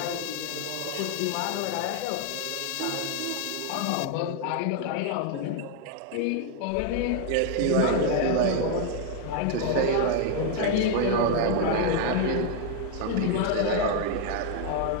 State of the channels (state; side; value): different; both; correlation 0.01